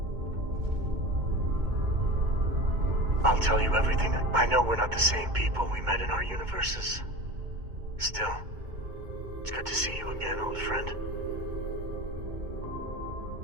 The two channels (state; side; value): late; left; 2.2 ms